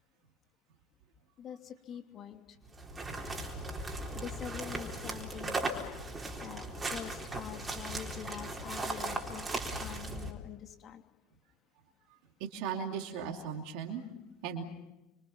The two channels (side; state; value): both; normal; correlation 0.50